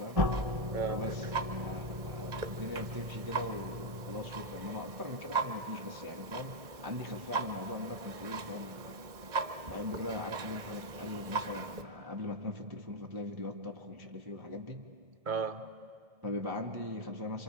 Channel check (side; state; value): left; late; 1.7 ms